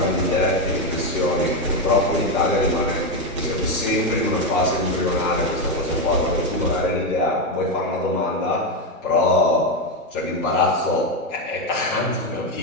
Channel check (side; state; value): both; normal; correlation 0.09